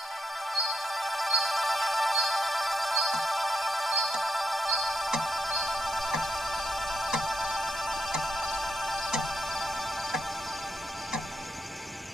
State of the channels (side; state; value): both; normal; correlation 0.82